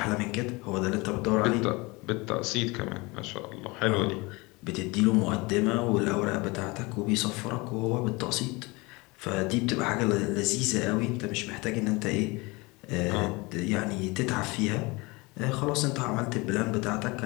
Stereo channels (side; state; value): right; quieter; 25.0 dB